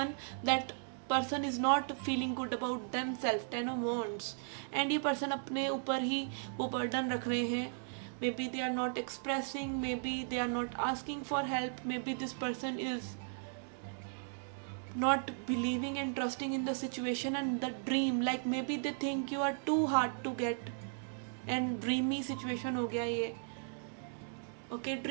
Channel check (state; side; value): silent; left; digital silence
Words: that person is not feeling good about them self, 10 of Wands. And ये पर्सन अपने ऊपर ही वो बर्डन रख रहे हैं. Maybe they are not expressing, maybe they are not asking for help, maybe this person is not believing and trusting in the situation and the dream, like maybe they think you are too hard to get, and dreamy situation हो गया ये. Okay,